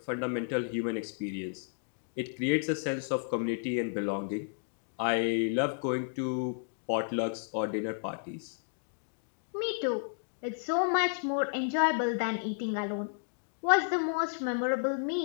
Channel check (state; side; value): silent; right; digital silence